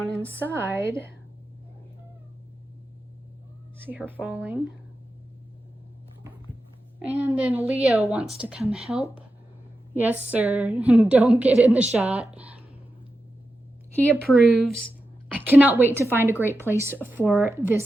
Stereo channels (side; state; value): both; normal; correlation 0.90